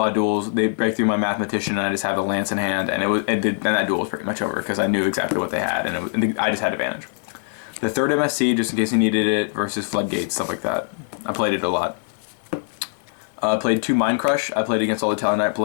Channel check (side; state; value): right; silent; 58 dB below the other